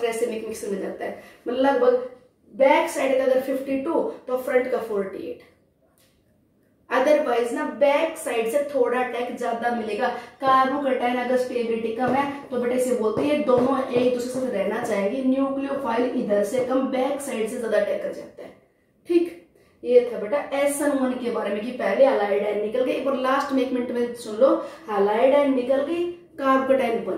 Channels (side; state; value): both; identical; correlation 1.00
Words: रेसिमिक मिक्सर मिल जाता है, मतलब लगभग बैक साइड का अगर 52 तो फ्रंट का 48, अदरवाइज ना बैक साइड से थोड़ा अटैक ज्यादा मिलेगा, कार्बोकेटाइन अगर स्टेबिलिटी कम है तो बेटा इसे बोलते हैं दोनों एक दूसरे से रहना चाहेंगे, न्यूक्लियोफाइल इधर से कम बैक साइड से ज्यादा अटैक कर जाता है। ठीक, ये था बेटा SN1 के बारे में कि पहले हाइलाइड आयन निकल गई, और लास्ट में 1 मिनट में सुन लो, हाइलाइड आयन निकल गई, कार्बोकेटाइन